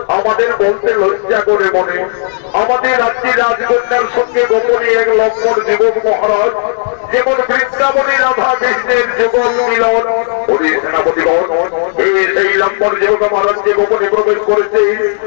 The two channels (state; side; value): silent; right; digital silence